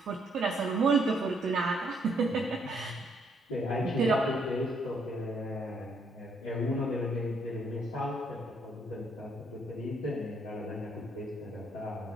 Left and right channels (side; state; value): both; normal; correlation 0.70